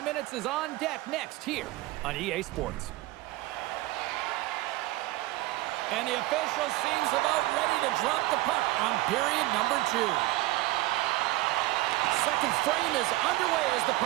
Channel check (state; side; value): quieter; left; 18.5 dB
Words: minutes is on deck next here on EA Sports. And the official seems about ready to drop the puck on period number 2. Second frame is underway as the